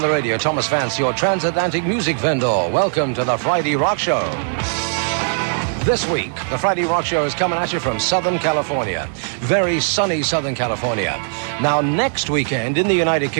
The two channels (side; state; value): left; silent; digital silence